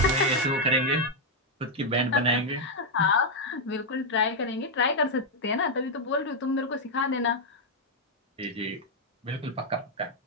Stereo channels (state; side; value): normal; both; correlation -0.01